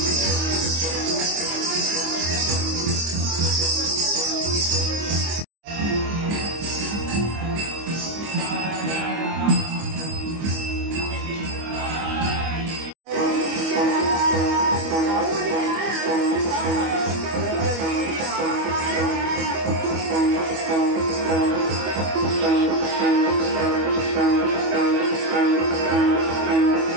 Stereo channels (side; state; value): left; late; 25 ms